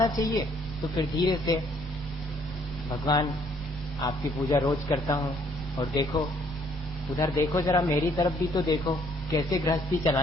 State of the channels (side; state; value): both; normal; correlation 0.65